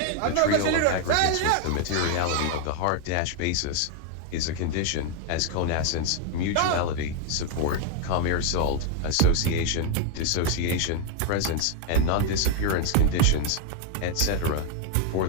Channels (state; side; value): different; both; correlation 0.00